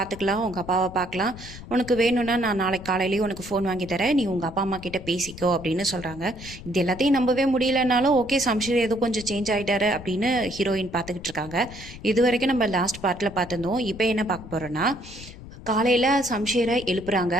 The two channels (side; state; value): left; noise; rumble, 15 dB below the sound